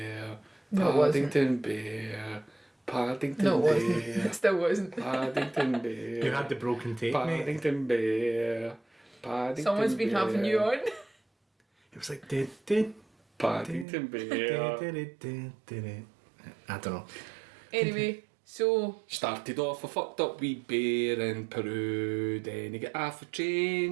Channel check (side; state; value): left; drops out; at 13.9 s